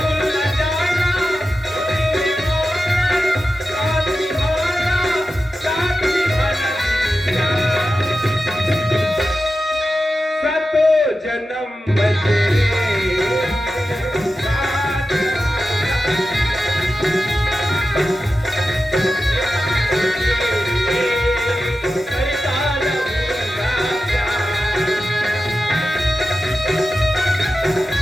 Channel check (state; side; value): normal; both; correlation 0.92